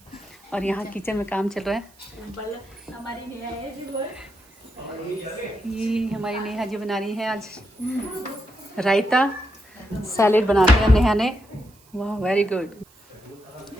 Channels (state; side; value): noise; right; hiss, 29 dB below the sound